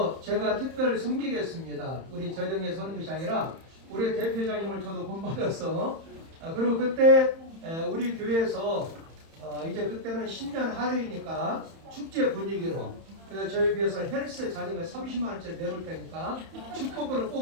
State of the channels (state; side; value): late; left; 31 ms